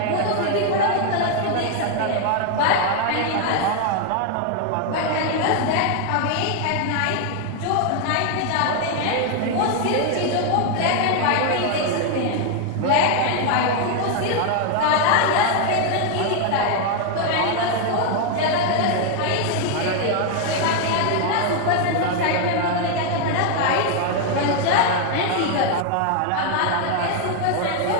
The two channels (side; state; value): both; different; correlation 0.00